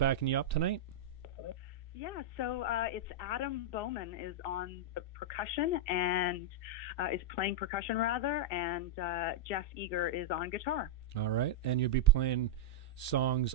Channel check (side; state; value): right; late; 2.7 ms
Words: you up tonight? Yeah, so it's Adam Bowman is on the percussion and is playing percussion, rather, and Jeff Eager is on guitar. All right. And you'll be playing